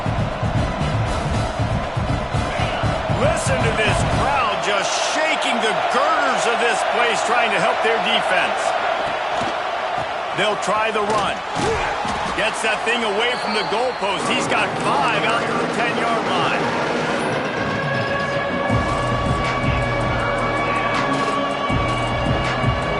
Listen to this crowd just shaking the girders of this place, trying to help their defense. They'll try the run. Gets that thing away from the goalpost. He's got 5 out to the 10-yard line.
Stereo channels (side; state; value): both; identical; correlation 1.00